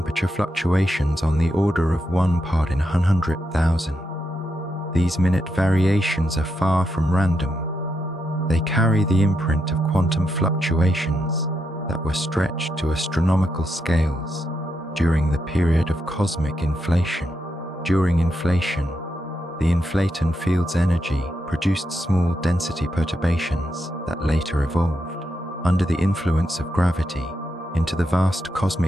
fluctuations on the order of 1 part in 100,000. These minute variations are far from random. They carry the imprint of quantum fluctuations that were stretched to astronomical scales during the period of cosmic inflation. During inflation, the inflaton field's energy produced small density perturbations that later evolved, under the influence of gravity, into the vast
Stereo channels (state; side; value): normal; both; correlation 0.83